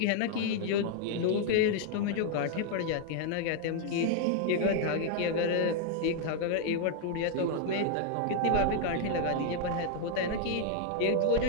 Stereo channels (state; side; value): different; both; correlation 0.00